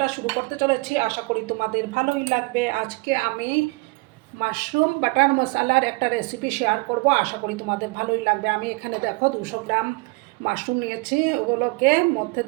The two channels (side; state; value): left; quieter; 26.4 dB